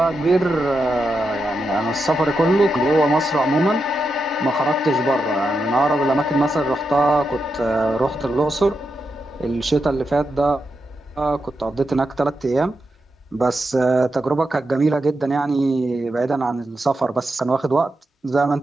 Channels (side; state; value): both; normal; correlation 0.86